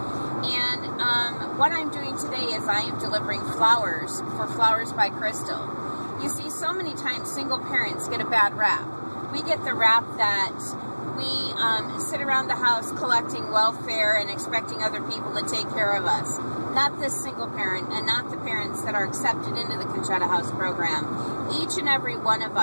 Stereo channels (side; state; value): both; inverted; correlation -1.00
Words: and what I'm doing today is I am delivering flowers for Flowers by Crystal. You see, so many times single parents get a bad rap. We get the rap that we sit around the house collecting welfare and expecting other people to take care of us. Not this single parent, and not the parents that are accepted into the Conchata House program. Each and every one of